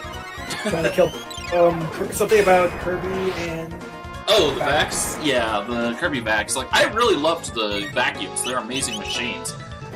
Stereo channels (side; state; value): both; identical; correlation 1.00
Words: Trying to kill something about Kirby and... Oh, the vacs? Yeah, the Kirby vacs. Like, I really loved the vacuums. They're amazing machines.